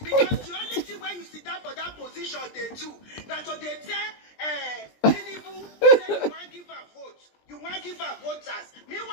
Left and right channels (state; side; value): late; right; 20 ms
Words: Because the only thing when you sit down for that position, they do. That's what they tell Tinubu, say you want to give a vote. You want to give her voters.